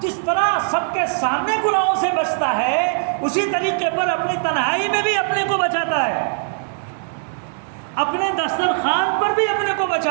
طرح سب کے سامنے گناہوں سے بچتا ہے اسی طریقے پر اپنی تنہائی میں بھی اپنے کو بچاتا ہے، اپنے دسترخوان پر بھی اپنے کو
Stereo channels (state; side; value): silent; left; 65 dB below the other